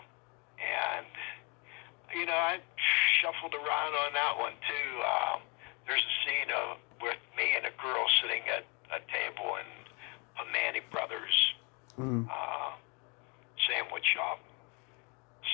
And, I shuffled around on that one, too. There's a scene with me and a girl sitting at a table in a Manny Brothers sandwich shop.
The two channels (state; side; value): quieter; right; 29.2 dB